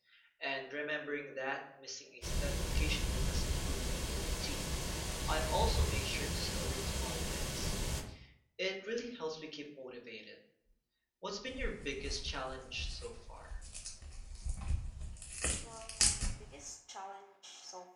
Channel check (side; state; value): both; identical; correlation 1.00